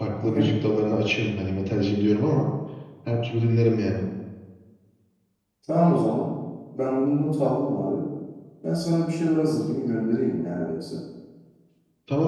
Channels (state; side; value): identical; both; correlation 1.00